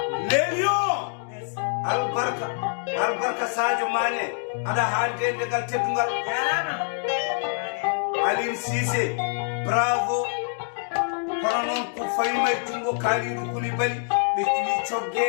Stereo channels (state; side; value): silent; right; 61 dB below the other